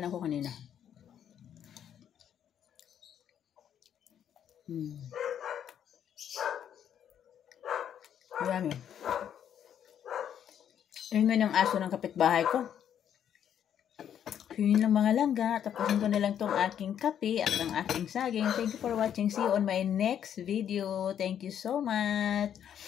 na ako kanina. Marami. Ingay ng aso ng kapitbahay ko. yun lang mga langga. Tapusin ko na lang tong aking kape at ang aking saging. Thank you for watching. See you on my next video. Thank you so much.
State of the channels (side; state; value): right; quieter; 9.4 dB